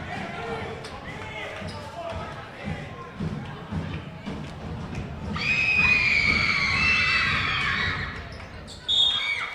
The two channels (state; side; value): identical; both; correlation 1.00